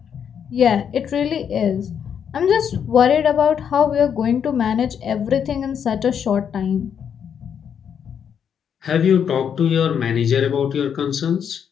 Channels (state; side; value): quieter; right; 7.9 dB